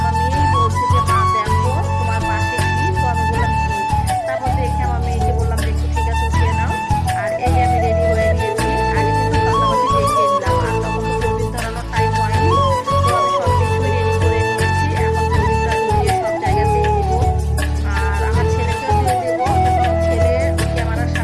মেয়েই বলছে যে মা দেখো তোমার পাশে কি। তো আমি বললাম কি। তারপর দেখে আমার মেয়েকে বললাম যে একটু ঠিক আছে উঠিয়ে নাও। আর এই যে আমি রেডি হয়ে নিয়েছি, আগে কিন্তু সন্ধ্যাবাতি দেখিয়ে নিলাম, আর তখন তো প্রদীপ ধরানোর টাইম হয়নি। তো আমি সব কিছুই রেডি করে নিয়েছি, এখন প্রদীপটা ধরিয়ে সব জায়গাতেই দিব। আর আমার ছেলেকেও দিয়ে দেবো, কিন্তু ছেলে ক্যামেরার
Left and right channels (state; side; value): identical; both; correlation 1.00